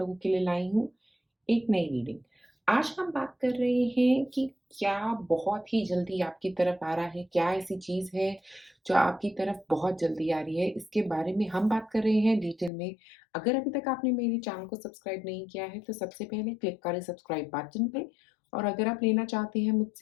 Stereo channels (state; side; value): drops out; right; at 12.7 s